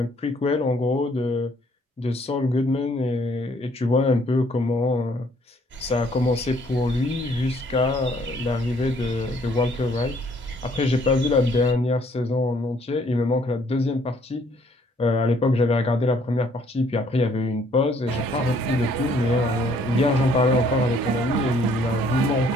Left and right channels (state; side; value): normal; both; correlation 0.63